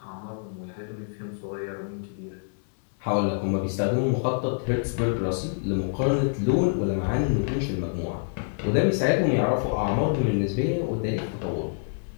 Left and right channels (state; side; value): silent; right; 61 dB below the other